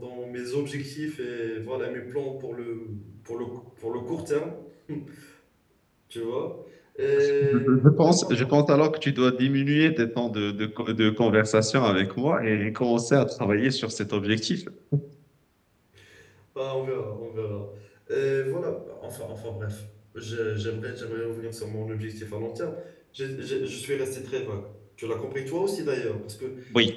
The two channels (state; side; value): identical; both; correlation 1.00